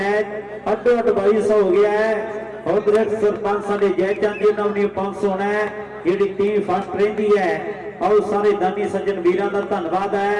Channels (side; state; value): both; identical; correlation 1.00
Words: ਅੱਡੋ ਅੱਡ 2200 ਹੋ ਗਿਆ ਹੈ। ਉਧਰ ਸਰਪੰਚ ਸਾਡੇ ਜੈ ਚੰਦ ਜੀ ਨਾਲ ਵੀ 500 ਹੋਣਾ ਹੈ, ਜਿਹੜੀ ਟੀਮ ਫਸਟ ਰਹਿੰਦੀ ਹੈ। ਆਓ ਸਾਰੇ ਦਾਨੀ ਸੱਜਣ ਵੀਰਾਂ ਦਾ ਧੰਨਵਾਦ